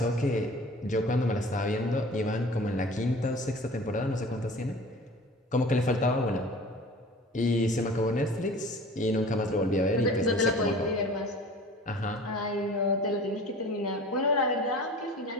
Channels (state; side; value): normal; both; correlation 0.42